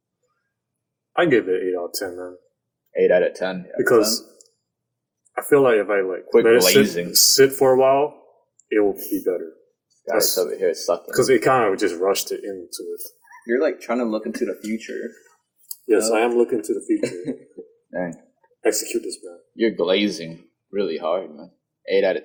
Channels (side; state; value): both; identical; correlation 1.00